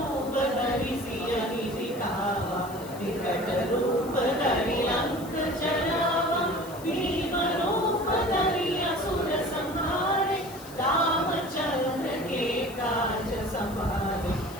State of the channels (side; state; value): left; noise; hiss, 18 dB below the sound